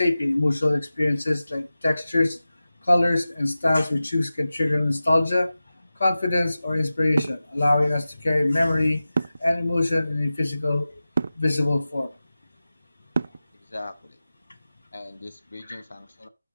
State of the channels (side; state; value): both; inverted; correlation -0.95